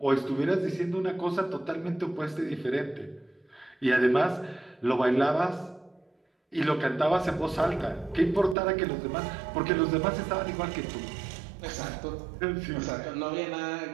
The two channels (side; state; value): left; drops out; at 8.6 s